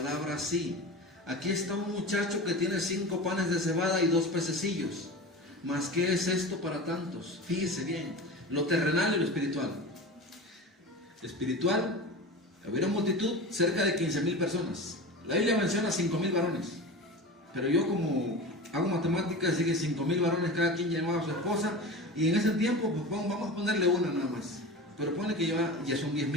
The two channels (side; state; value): both; normal; correlation 0.30